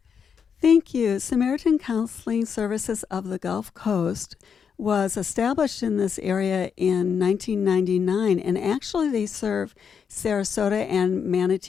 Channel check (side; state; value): right; quieter; 6.8 dB